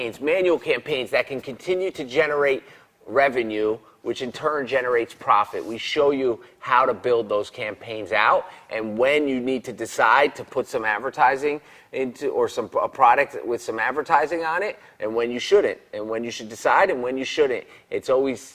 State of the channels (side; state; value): both; identical; correlation 1.00